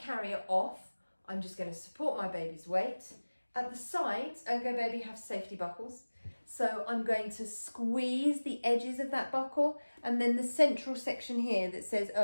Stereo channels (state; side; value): inverted; both; correlation -1.00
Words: off, I'm just going to support my baby's weight. At the sides, ErgoBaby have safety buckles. So I'm going to squeeze the edges of that buckle, and then the central section here that says